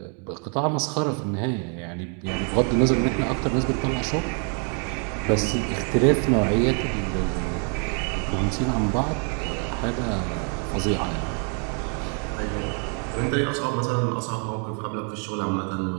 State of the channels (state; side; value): quieter; left; 39.9 dB